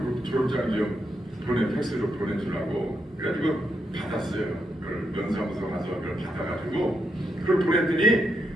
졸업장 좀 팩스로 보내주라고 그래가지고 받았어요. 그걸 면사무소 가서 그걸 받아가지고 그걸 보냈더니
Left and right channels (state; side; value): normal; both; correlation 0.82